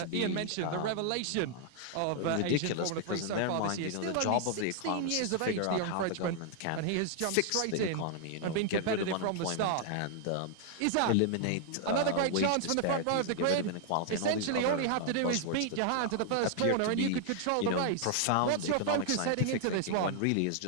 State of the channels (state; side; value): different; both; correlation 0.00